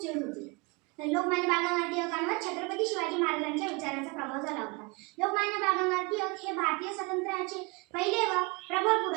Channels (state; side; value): quieter; left; 27.6 dB